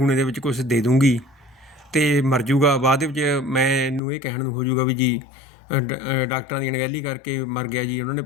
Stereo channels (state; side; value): drops out; right; at 4.0 s